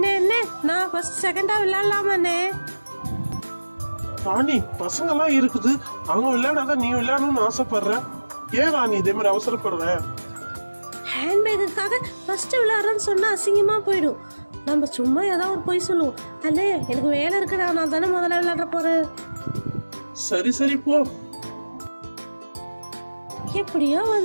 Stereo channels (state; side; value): inverted; both; correlation -1.00